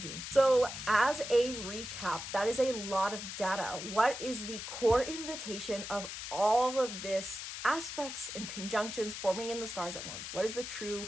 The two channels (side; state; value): left; noise; hiss, 8 dB below the sound